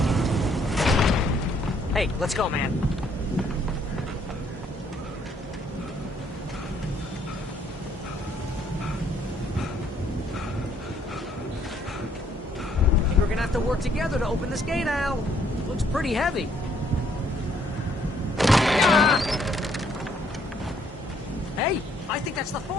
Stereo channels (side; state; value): both; normal; correlation 0.67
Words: Hey, let's go, man. We're gonna have to work together to open this gate, Al. Looks pretty heavy. Ah! Hey, I think that's the